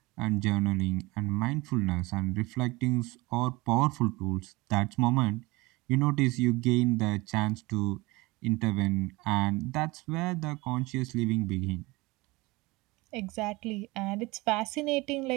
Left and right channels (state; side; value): quieter; left; 22.7 dB